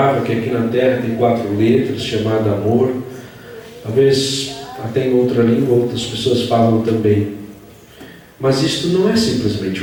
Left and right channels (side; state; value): both; identical; correlation 1.00